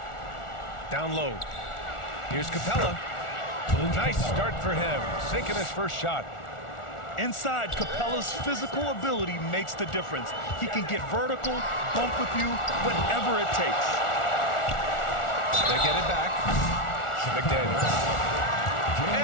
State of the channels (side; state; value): right; late; 1.4 ms